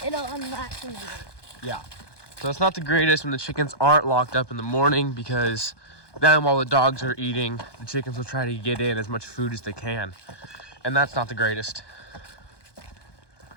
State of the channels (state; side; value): late; right; 1.2 ms